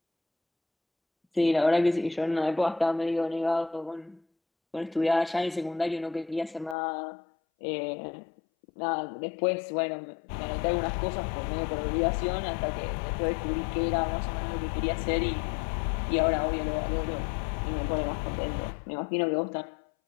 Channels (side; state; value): right; drops out; at 6.8 s